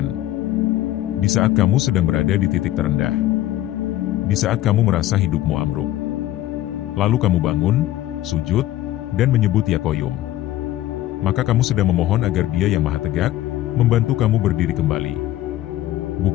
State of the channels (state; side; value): quieter; right; 14.1 dB